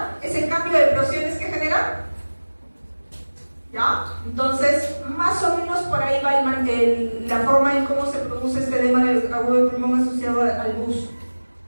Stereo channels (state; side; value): inverted; both; correlation -1.00